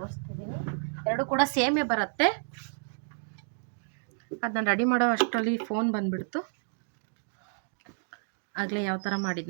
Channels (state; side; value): silent; left; digital silence